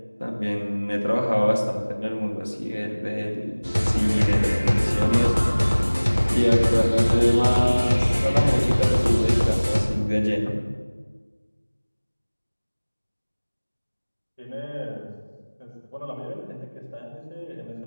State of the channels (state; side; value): inverted; both; correlation -1.00